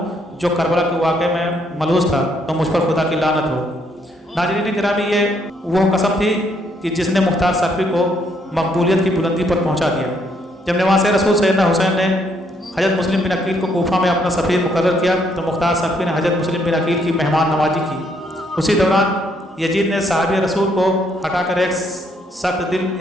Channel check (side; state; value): both; normal; correlation 0.71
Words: जो करबला के वाक़े में मलूस था तो मुझ पर खुदा की लानत हो। नाज़रीन गिरामी, ये वो कसम थी कि जिसने मुख्तार सख्फी को मकबूलियत की बुलंदी पर पहुंचा दिया। जब नवासे रसूल सैयदना हुसैन ने हज़रत मुस्लिम बिन अकील को कूफा में अपना सफ़ीर मुकर्रर किया तो मुख्तार सख्फी ने हज़रत मुस्लिम बिन अकील की मेहमान नवाजी की। उसी दौरान यजीद ने साहबी रसूल को हटाकर एक सख्त दिल